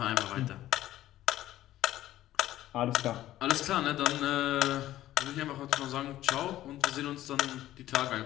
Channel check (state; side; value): quieter; right; 14.1 dB